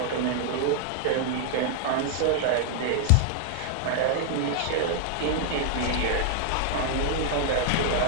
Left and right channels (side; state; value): both; different; correlation 0.00